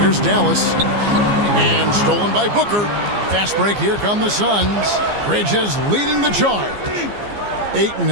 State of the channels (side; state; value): left; late; 15 ms